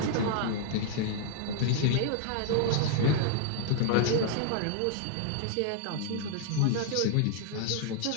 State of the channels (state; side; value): different; both; correlation 0.00